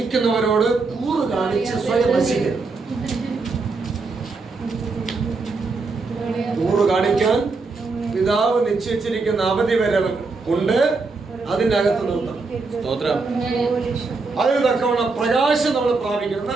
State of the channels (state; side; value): quieter; left; 4.0 dB